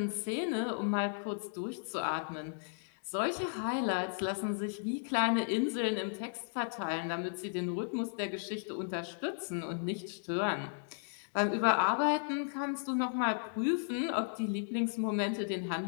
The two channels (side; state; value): right; silent; digital silence